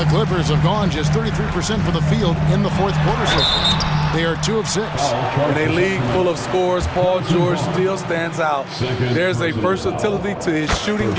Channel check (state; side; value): identical; both; correlation 1.00